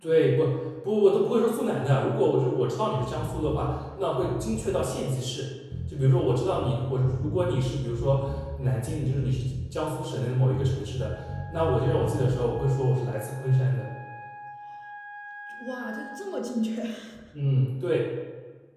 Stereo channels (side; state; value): both; identical; correlation 1.00